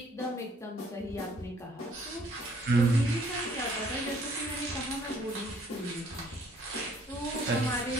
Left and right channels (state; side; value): normal; both; correlation 0.61